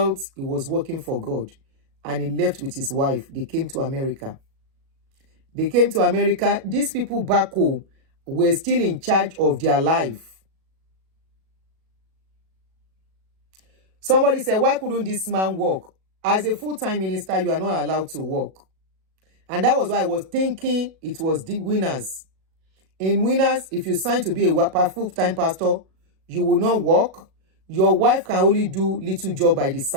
he was working for God. And he left with his wife. They came to America. They came to America. These people back home were still in charge of their life. Somebody said, why couldn't this man work? As a full-time minister, you are not allowed to work. And that was why I was thinking it was the winners. In winners, if you sign to be a full-time pastor, you will not work. Your wife can only do little job by the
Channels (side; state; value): left; late; 37 ms